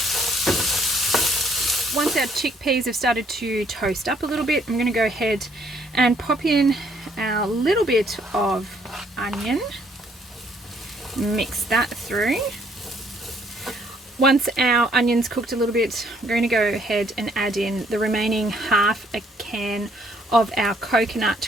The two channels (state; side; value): normal; both; correlation 0.66